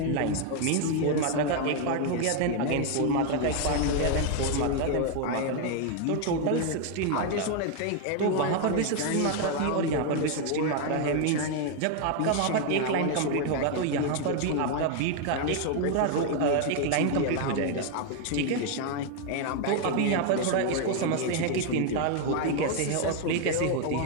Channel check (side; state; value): both; different; correlation 0.01